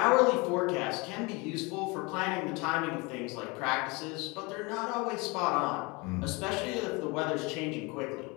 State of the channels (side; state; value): right; quieter; 27.1 dB